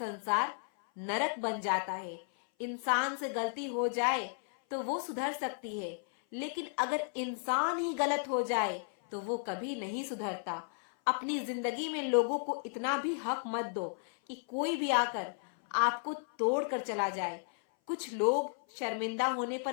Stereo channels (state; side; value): silent; right; 55 dB below the other